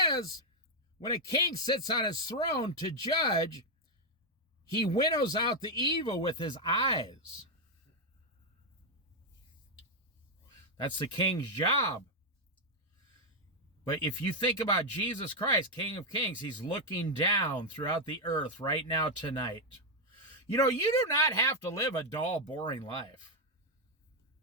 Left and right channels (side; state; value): both; normal; correlation 0.02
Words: when a king sits on his throne to judge, he winnows out the evil with his eyes. That's the king's job. But if you think about Jesus Christ, King of Kings, he's looking down throughout the earth right now tonight. You know, you do not have to live a dull, boring life.